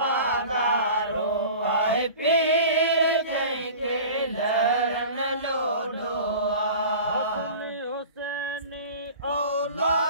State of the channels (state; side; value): inverted; both; correlation -0.40